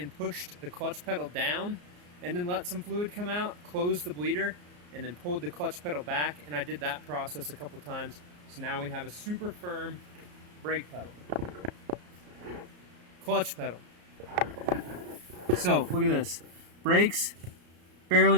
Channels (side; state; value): left; late; 34 ms